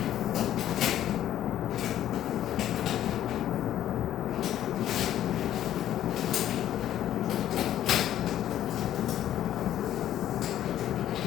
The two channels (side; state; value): right; quieter; 11.9 dB